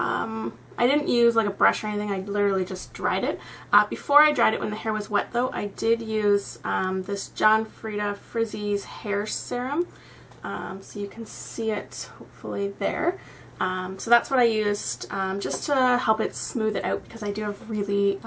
didn't use like a brush or anything, I literally just dried it. Before I dried it, when the hair was wet though, I did use this John Frieda Frizzy's hair serum. So you can see it hopefully there. So that's what I used just to help it smooth it out because I do have really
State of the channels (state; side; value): identical; both; correlation 1.00